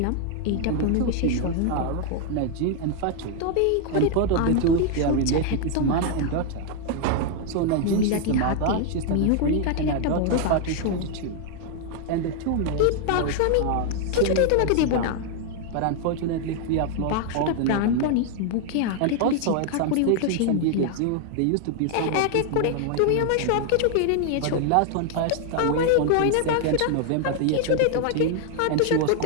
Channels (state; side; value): different; both; correlation 0.00